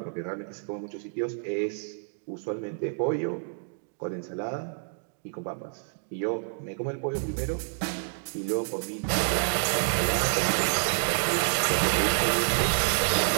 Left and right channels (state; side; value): silent; left; digital silence